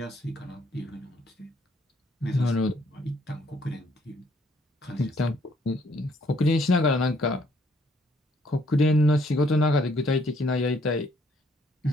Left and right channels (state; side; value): normal; both; correlation 0.66